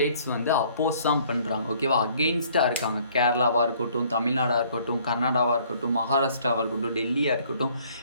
வந்து அப்போஸ் தான் பண்ணுறாங்க. ஓகேவா, அகெயின்ஸ்டாக இருக்காங்க. கேரளாவாக இருக்கட்டும், தமிழ்நாடாக இருக்கட்டும், கர்நாடகாவாக இருக்கட்டும், மகாராஷ்டிராவாக இருக்கட்டும், டெல்லியாக இருக்கட்டும்,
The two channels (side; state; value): both; inverted; correlation -0.59